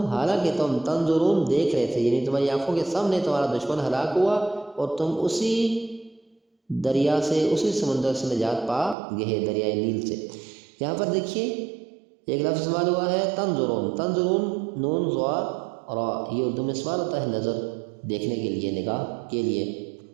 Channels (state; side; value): drops out; left; at 9.0 s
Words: حالانکہ تم، تنظرون، دیکھ رہے تھے، یعنی تمہاری آنکھوں کے سامنے تمہارا دشمن ہلاک ہوا اور تم اسی دریا سے، اسی سمندر سے نجات پا گئے، دریائے نیل سے. یہاں پر دیکھیے ایک لفظ استعمال ہوا ہے تنظرون. تنظرون، نون ضا را، یہ اردو میں استعمال ہوتا ہے نظر، دیکھنے کے لیے، نگاہ کے لیے.